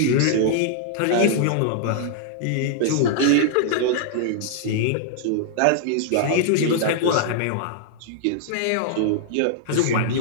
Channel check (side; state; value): both; different; correlation -0.01